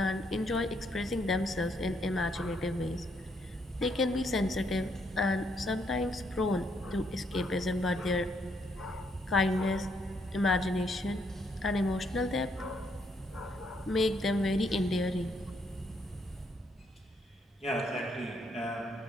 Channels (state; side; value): normal; both; correlation 0.73